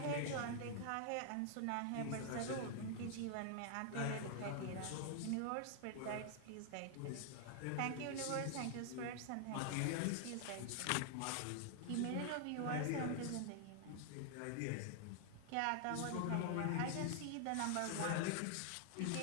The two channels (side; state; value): both; different; correlation 0.00